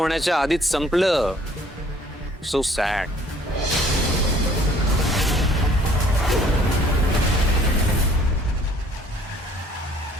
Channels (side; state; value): both; normal; correlation 0.58